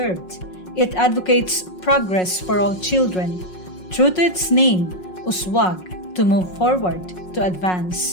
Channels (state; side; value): late; right; 5.5 ms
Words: It advocates progress for all children. True to its name, Uswag, to move forward, to